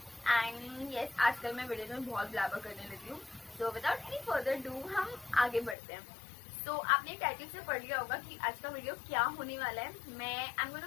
and yes, आजकल मैं वीडियोस में बहुत ब्लैबर करने लगी हूँ। So without any further do हम आगे बढ़ते हैं। आपने टाइटल से पढ़ लिया होगा कि आज का वीडियो क्या होने वाला है। मैं I am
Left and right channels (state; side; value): drops out; right; at 5.8 s